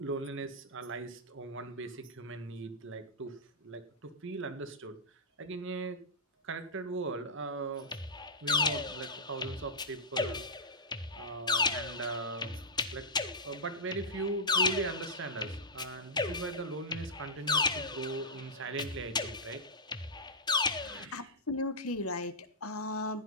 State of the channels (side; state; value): both; normal; correlation -0.12